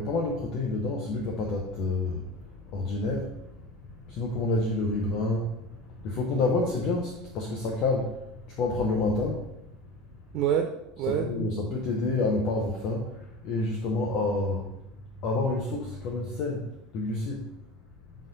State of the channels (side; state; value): both; normal; correlation 0.33